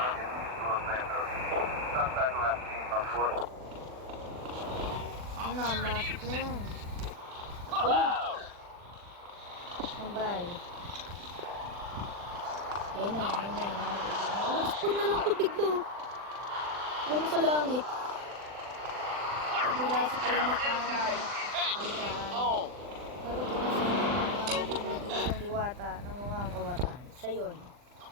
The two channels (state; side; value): late; left; 40 ms